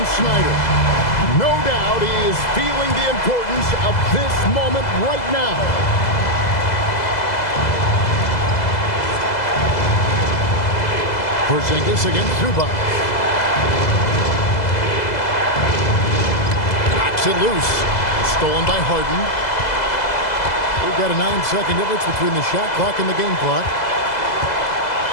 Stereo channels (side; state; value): right; late; 2.0 ms